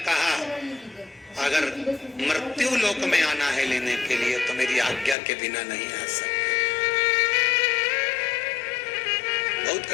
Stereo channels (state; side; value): drops out; right; at 5.2 s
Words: अगर मृत्यु लोक में आना है लेने के लिए तो मेरी आज्ञा के बिना नहीं आ सकते। बहुत